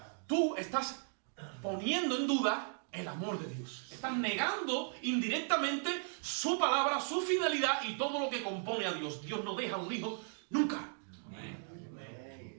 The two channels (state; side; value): silent; left; 53 dB below the other